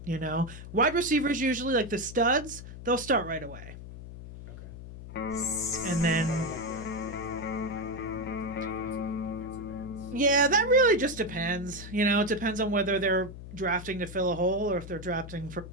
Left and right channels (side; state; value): left; noise; hum, 12 dB below the sound